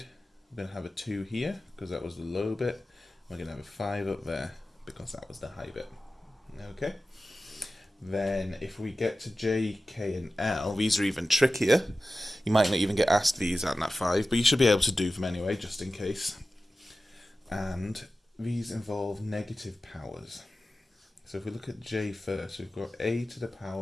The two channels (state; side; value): normal; both; correlation 0.95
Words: we're going to have a 2 here because that was the low bit. We're going to have a 5 up there because that was the high bit. Okay. Then if we get to J, K and L, these are even trickier. You might not even get asked these at Nat 5, but you should be able to do them anyway, just in case. And these involve negative powers. So if we look at J first, we've got a to the